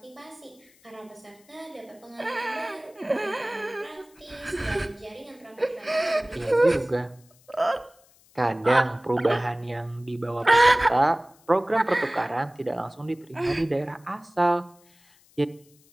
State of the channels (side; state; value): left; noise; hiss, 30 dB below the sound